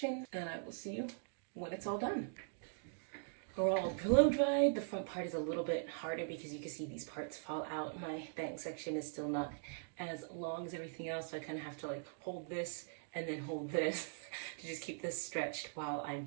and I will see you when it's all done. We're all blow dried. The front part is a little bit harder because you can see these parts fall out. My bang section is still not as long as everything else, so I kind of have to like hold this and then hold this to just keep this stretched while I'm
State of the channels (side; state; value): left; silent; digital silence